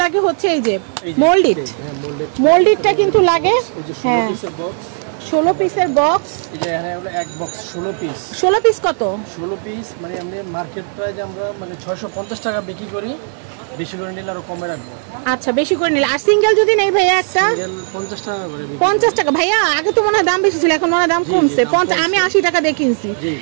লাগে হচ্ছে এই যে মোল্ডিটটা কিন্তু লাগে। হ্যাঁ, 16 পিসের বক্স। এই যে এখানে হলো এক বক্স 16 পিস। 16 পিস কত? 16 পিস মানে আমরা মার্কেট প্রাইস আমরা মানে 650 টাকা বিক্রি করি, বেশি করে নিলে আরো কমে রাখবো। আচ্ছা, বেশি করে নিলে। আর সিঙ্গেল যদি নেই ভাইয়া একটা? সিঙ্গেল 50 টাকা করে। 50 টাকা ভাইয়া? আগে তো মনে হয় দাম বেশি ছিল, এখন মনে হয় দাম কমছে। আমি 80 টাকা দিয়ে কিনছি,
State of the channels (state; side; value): silent; left; 61 dB below the other